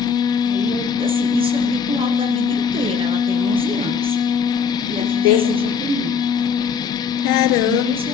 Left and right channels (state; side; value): quieter; right; 6.3 dB